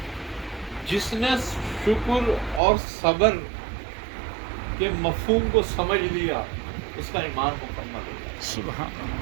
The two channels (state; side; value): drops out; left; at 2.6 s